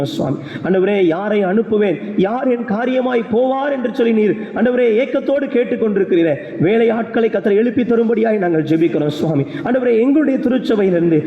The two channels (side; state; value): both; identical; correlation 1.00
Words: சுவாமி. ஆண்டவரே, யாரை அனுப்புவேன், யார் என் காரியமாய் போவார் என்று சொல்லி நீர் ஆண்டவரே ஏக்கத்தோடு கேட்டுக்கொண்டிருக்கிறீரே. வேலை ஆட்களை கர்த்தர் எழுப்பி தரும்படியாய் நாங்கள் ஜெபிக்கிறோம் சுவாமி. ஆண்டவரே, எங்களுடைய திருச்சபையிலிருந்து,